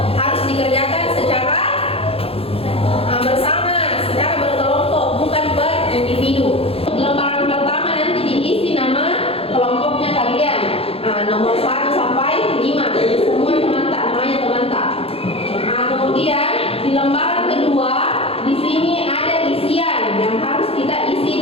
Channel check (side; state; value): right; late; 0.28 ms